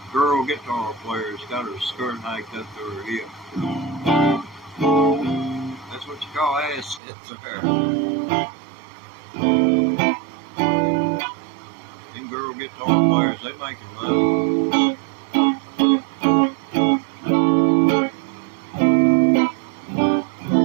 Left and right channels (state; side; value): drops out; left; at 7.0 s